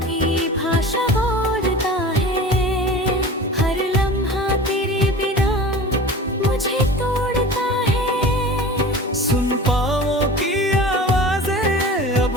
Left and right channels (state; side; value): normal; both; correlation 0.36